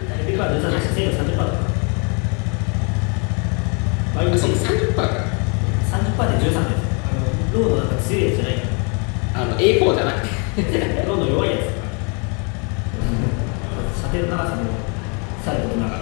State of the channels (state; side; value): quieter; right; 35.5 dB